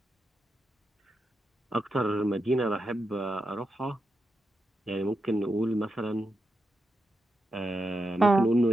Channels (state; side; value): normal; both; correlation 0.87